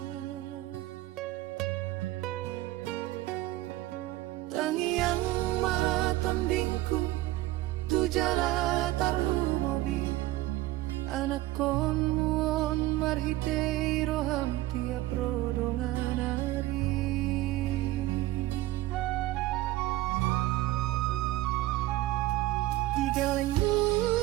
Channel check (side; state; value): left; quieter; 16.7 dB